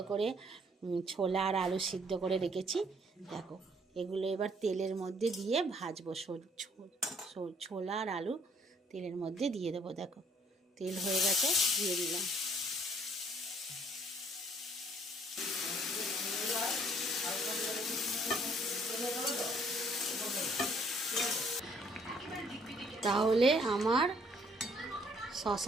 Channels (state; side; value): normal; both; correlation 0.63